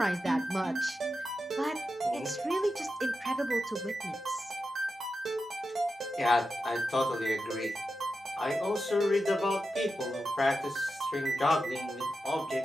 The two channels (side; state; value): both; normal; correlation 0.90